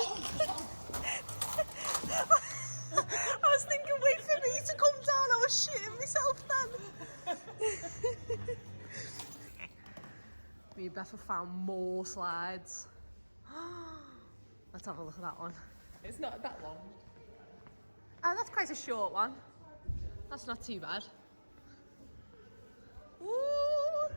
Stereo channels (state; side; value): inverted; both; correlation -1.00